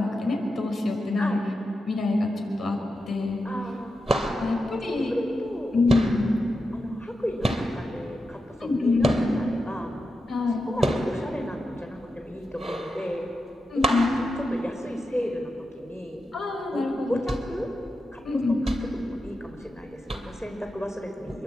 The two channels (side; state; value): both; normal; correlation 0.89